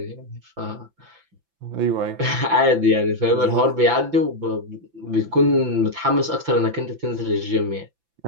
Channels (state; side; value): late; left; 5.9 ms